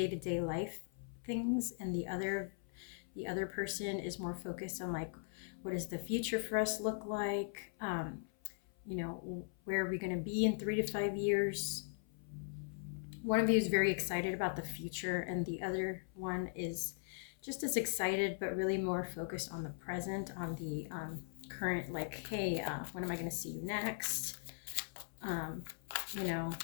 life things, and the other person is more focused on, like, what does the future for us look like? Where are we going to be in 3 to 5 years? One of you is very excited about the future, and the other one is just as excited, but really more focused on the present, on the current, like, hey, when am I going to see you next?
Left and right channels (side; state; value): right; silent; 51 dB below the other